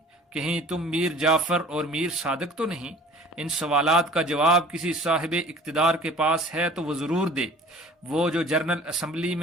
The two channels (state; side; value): normal; both; correlation 0.47